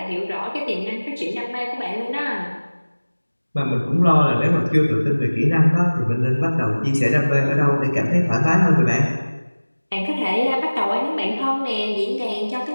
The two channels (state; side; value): inverted; both; correlation -1.00